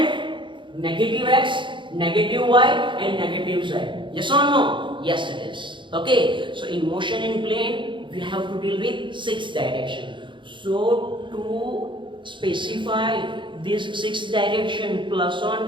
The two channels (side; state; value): left; late; 0.23 ms